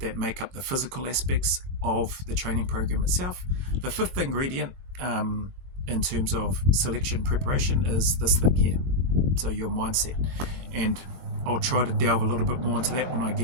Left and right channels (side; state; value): left; late; 22 ms